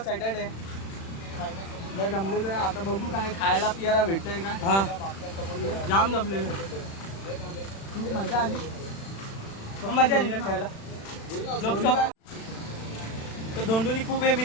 लय दमलेलो आहे. आता बघू काय खायला पियाला भेटतंय का. हा जाम दमलेलो. खूप मजा आली. मजा आली ना खायला. तर धोंडूनी खूप हे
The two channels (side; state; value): right; late; 36 ms